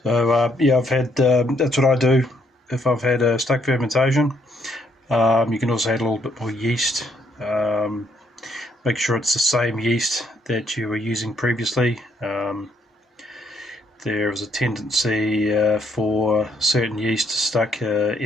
So I've had, that's what I do if I've had a stuck fermentation. You can also add a little bit more yeast. Make sure it's the same yeast that you were using previously. There is a tendency for certain yeast to stuck.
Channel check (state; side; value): normal; both; correlation 0.71